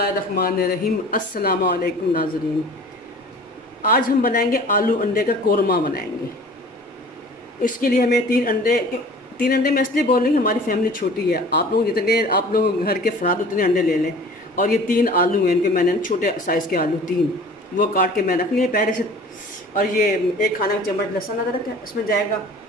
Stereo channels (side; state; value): both; normal; correlation 0.45